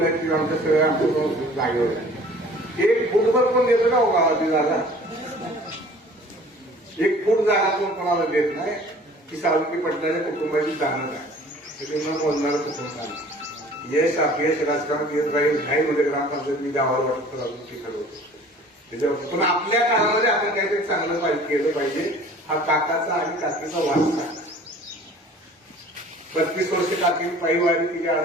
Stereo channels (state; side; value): normal; both; correlation 0.49